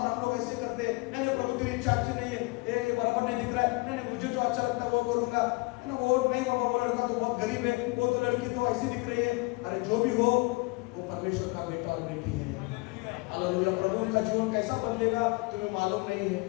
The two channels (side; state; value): right; quieter; 26.3 dB